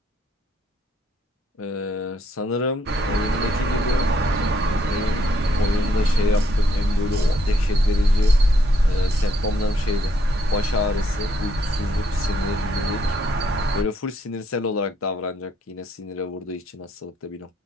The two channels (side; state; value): both; normal; correlation 0.72